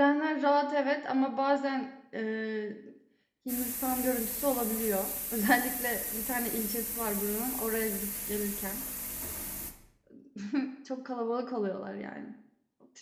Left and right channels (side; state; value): both; identical; correlation 1.00